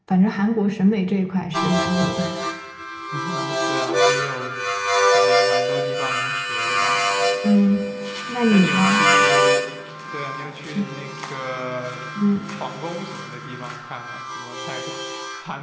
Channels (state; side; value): identical; both; correlation 1.00